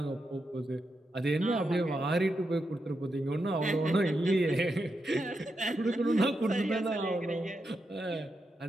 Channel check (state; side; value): normal; both; correlation 0.85